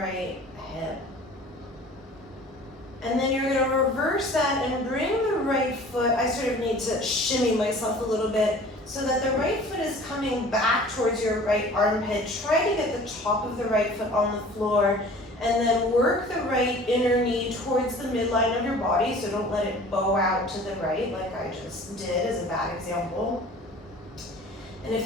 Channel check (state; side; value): normal; both; correlation 0.46